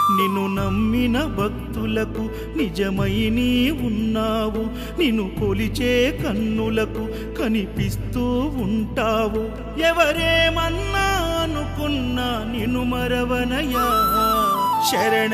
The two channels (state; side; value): identical; both; correlation 1.00